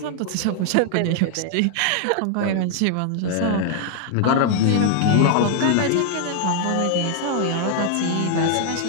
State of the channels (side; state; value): both; different; correlation 0.00